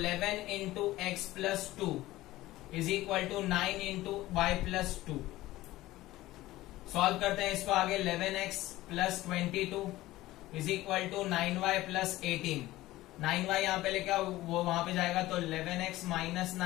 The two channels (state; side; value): quieter; right; 16.9 dB